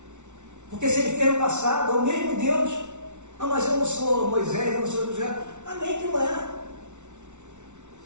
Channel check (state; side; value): late; left; 0.83 ms